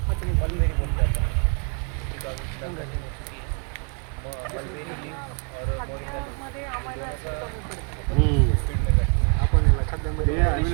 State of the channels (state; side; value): quieter; left; 37.8 dB